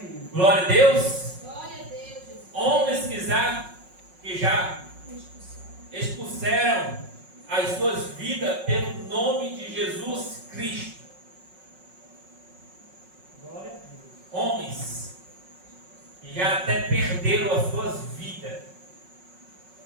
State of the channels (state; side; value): late; left; 5.4 ms